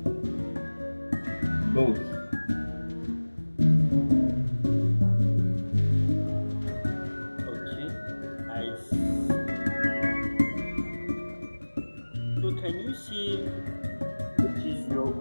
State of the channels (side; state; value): both; inverted; correlation -1.00